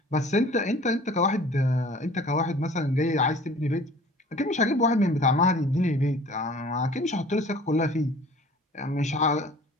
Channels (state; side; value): normal; both; correlation 0.47